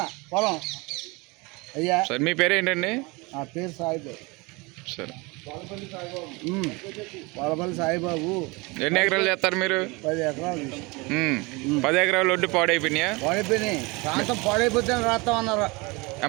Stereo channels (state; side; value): quieter; left; 25.9 dB